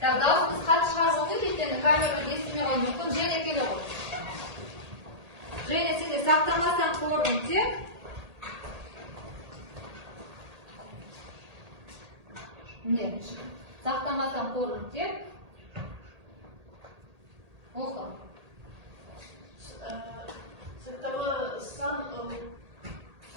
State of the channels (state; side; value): late; left; 1.8 ms